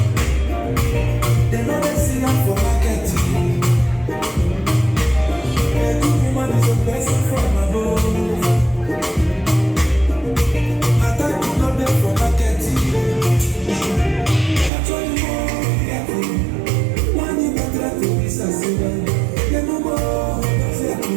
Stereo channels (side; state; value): left; drops out; at 14.7 s